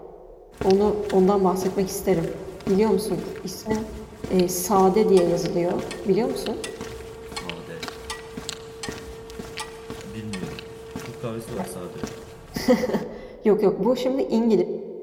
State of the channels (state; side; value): identical; both; correlation 1.00